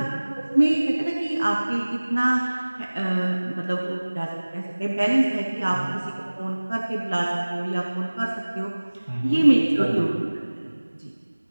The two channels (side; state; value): both; inverted; correlation -1.00